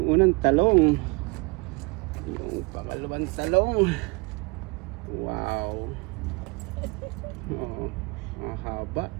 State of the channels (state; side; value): quieter; left; 28.7 dB